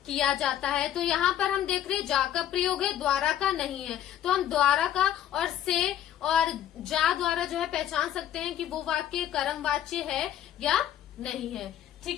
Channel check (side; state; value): right; quieter; 11.1 dB